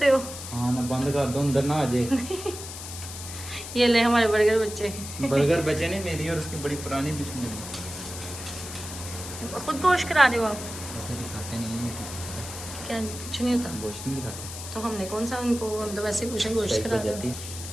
हो? हाँ ना बंद कर दो अंदर ना आ जाए। ये ले हमारे बर्गर बच्चे। बर्गर बचे नहीं, मेरी और उसकी बड़ी पुरानी दुश्मनी। खुद गोश्त करा रहे हो आप? ऐसे दिखाते नहीं हैं। क्या कुछ नहीं होता? गोश्त नहीं दिखाते तो हमने कौन सा उनको, हम तो वैसे पूछे गोश्त करा रहे हो।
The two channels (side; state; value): left; noise; hiss, 10 dB below the sound